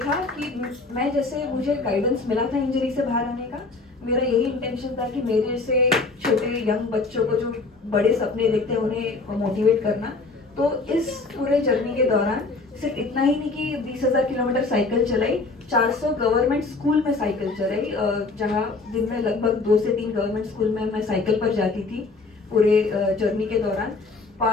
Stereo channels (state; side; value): quieter; right; 3.7 dB